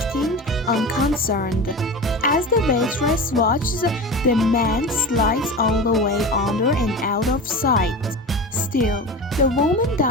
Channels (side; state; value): both; normal; correlation 0.29